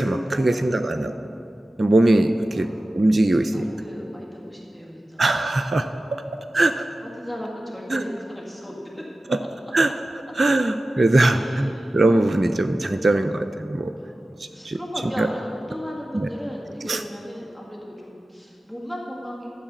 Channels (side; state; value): both; normal; correlation 0.95